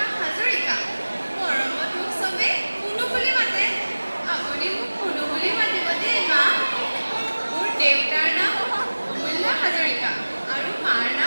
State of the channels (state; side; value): inverted; both; correlation -1.00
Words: হাজৰিকা মৰমত মোক চবে কুনু বুলি মাতে আপুনি মোক কুনু বুলি মাতিব দেই মা মোৰ দেউতাৰ নাম অমূল্য হাজৰিকা আৰু মাৰ